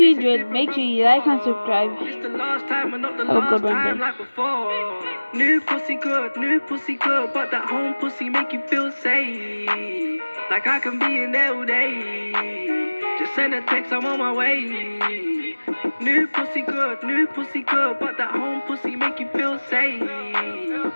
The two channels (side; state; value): both; inverted; correlation -1.00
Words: enjoyed. Make sure you like and subscribe. It's the last time and not the Have a good last one, time then. like before. New pussy good, but that home pussy make you feel safe. Like I can be in there all day. Just send a text, I'm on my way. New pussy good, but that home pussy make you feel safe.